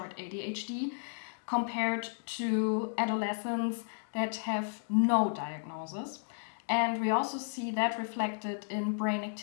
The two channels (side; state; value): right; silent; digital silence